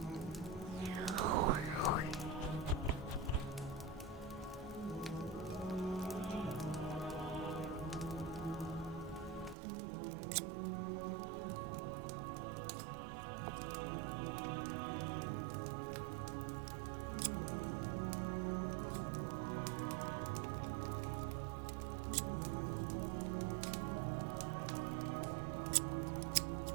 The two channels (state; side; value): drops out; left; at 9.6 s